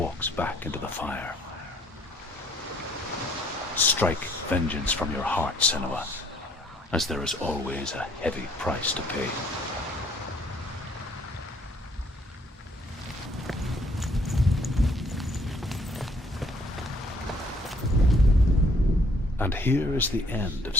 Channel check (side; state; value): both; normal; correlation 0.62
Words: back into the fire. Strike vengeance from your heart, Senua, as there is always a heavy price to pay. And here is the end of